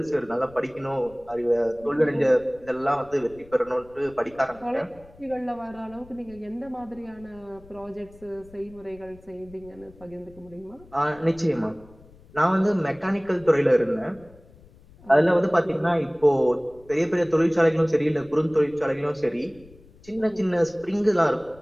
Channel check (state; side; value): noise; left; rumble, 24 dB below the sound